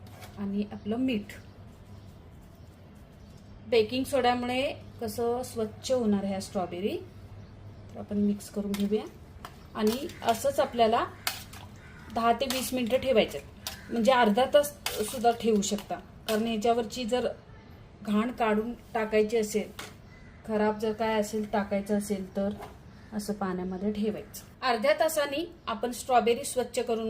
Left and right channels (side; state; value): both; identical; correlation 1.00